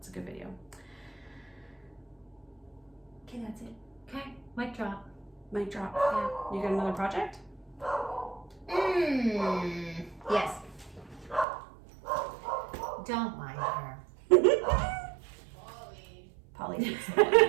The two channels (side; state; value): left; drops out; at 11.5 s